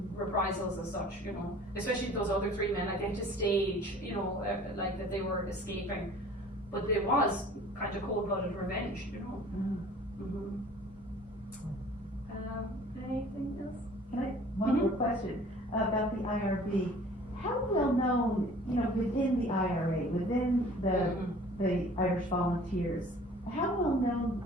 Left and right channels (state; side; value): normal; both; correlation 0.49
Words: reprisals as such, especially those other three men, like they had to stage, like that they were escaping, but it was kind of cold-blooded revenge, Anything else? Can I, one more question about the IRB. How well known, within the IRA, within the Irish Volunteers, how well known